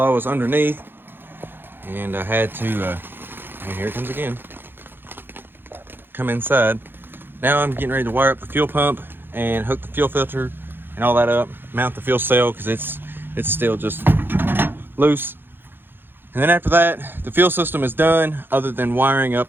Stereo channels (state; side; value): late; left; 0.10 ms